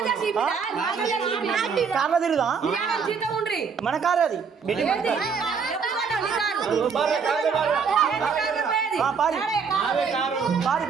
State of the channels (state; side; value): quieter; left; 5.8 dB